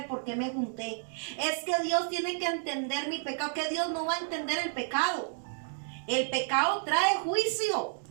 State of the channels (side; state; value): left; silent; digital silence